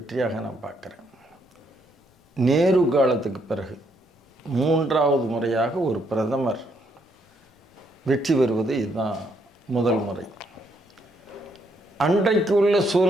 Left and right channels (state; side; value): normal; both; correlation 0.73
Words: நான் பார்க்குறேன். நேரு காலத்துக்கு பிறகு 3வது முறையாக ஒரு பிரதமர் வெற்றி பெறுவது இதுதான் முதல் முறை. அன்றைக்கு உள்ள